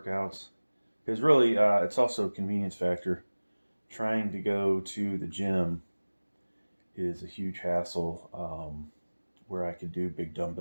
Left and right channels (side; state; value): both; inverted; correlation -1.00